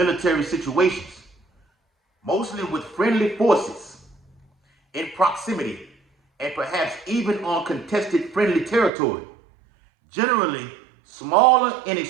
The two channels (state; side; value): drops out; left; at 8.9 s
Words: situations, mostly with friendly forces in proximity and perhaps even on contested friendly territory. Generally, smaller in